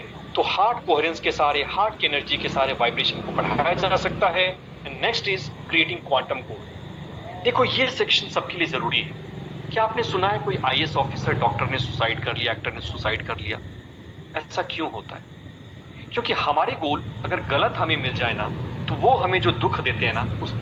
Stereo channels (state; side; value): identical; both; correlation 1.00